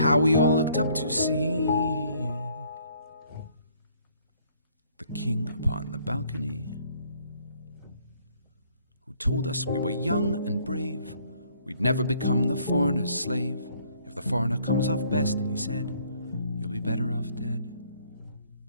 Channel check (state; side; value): inverted; both; correlation -0.63